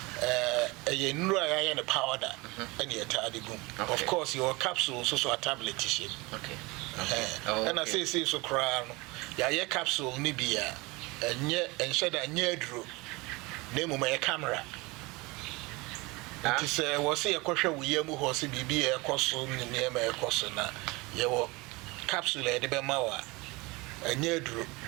you know in the powder and you tie the gum. Of course your capsules also a tablet shape. Okay. And I say so crown ya capsule ni bia and shed a near drew name my camera. It is was say a question we yamu horse be a cosso near my cossona. Your capsule de bemawa a near drew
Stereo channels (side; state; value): left; quieter; 24.4 dB